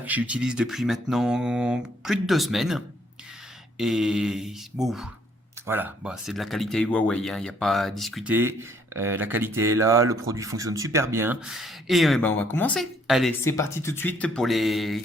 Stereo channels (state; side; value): normal; both; correlation 0.66